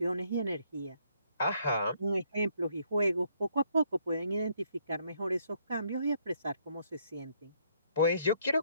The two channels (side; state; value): both; inverted; correlation -0.70